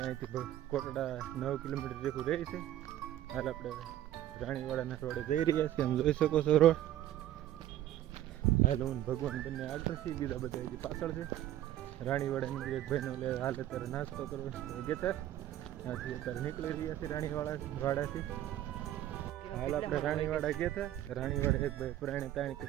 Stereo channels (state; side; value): quieter; left; 12.8 dB